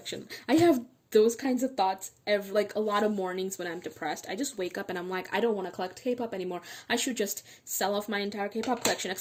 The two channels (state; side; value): identical; both; correlation 1.00